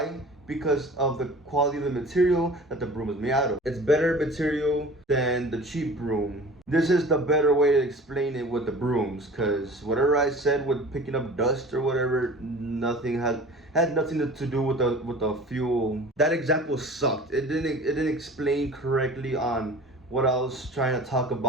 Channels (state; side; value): normal; both; correlation 0.42